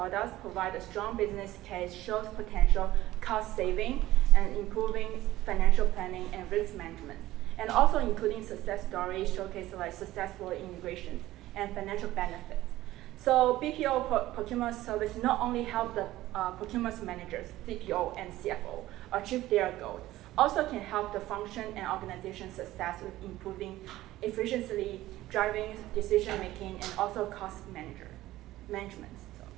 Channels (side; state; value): left; quieter; 16.0 dB